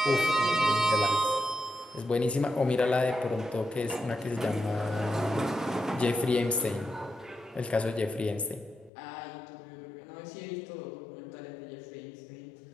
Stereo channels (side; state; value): right; drops out; at 8.9 s